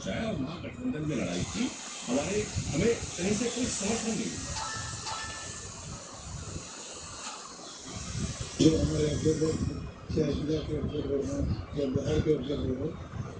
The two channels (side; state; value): both; identical; correlation 1.00